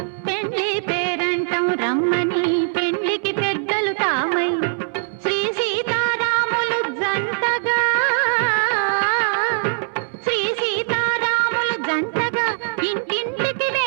పెండ్లి పేరంటం రమ్మని పెండ్లికి పెద్దలు తామై శ్రీ సీతారాములు జంటగా శ్రీ సీతారాములు జంటగా ఇంటింటికి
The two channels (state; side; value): silent; left; digital silence